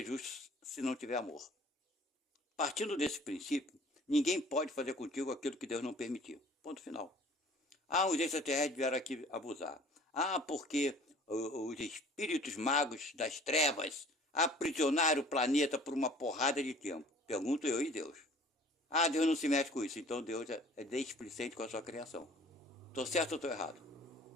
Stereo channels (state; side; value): normal; both; correlation 0.50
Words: justo se não tiver amor. Partindo desse princípio, ninguém pode fazer contigo aquilo que Deus não permitiu. Ponto final. Os extraterrestres vieram aqui abusar. Porque os espíritos magos das trevas aprisionaram o planeta por uma porrada de tempo. Pergunto eu e Deus. Deus não se mete com isso. Então Deus é displicente com a sua criação. Estou certo ou estou errado?